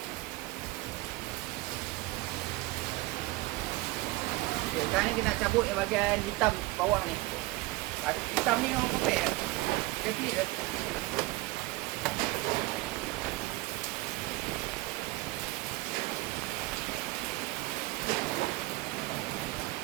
Okay, sekarang ni kita nak cabut yang bahagian hitam bawah ni. Hitam ni orang kopek dia flip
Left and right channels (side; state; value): left; quieter; 20.9 dB